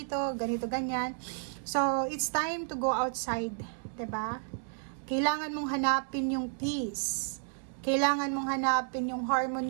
ganito, ganyan. So, it's time to go outside. 'Di ba? Kailangan mong hanapin yung peace. Kailangan mong hanapin yung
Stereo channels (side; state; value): left; silent; digital silence